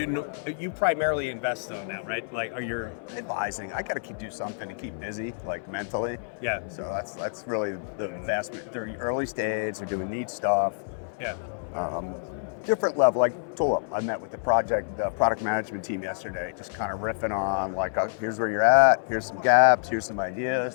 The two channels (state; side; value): silent; right; 60 dB below the other